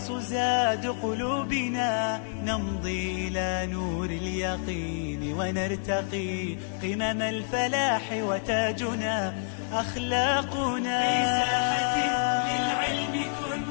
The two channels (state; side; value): silent; right; digital silence